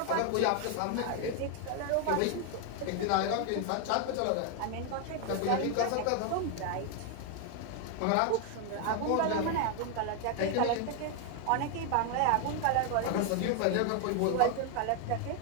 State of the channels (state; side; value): different; both; correlation 0.00